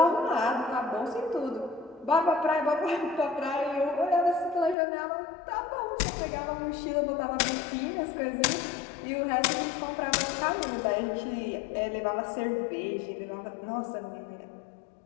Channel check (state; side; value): drops out; right; at 4.8 s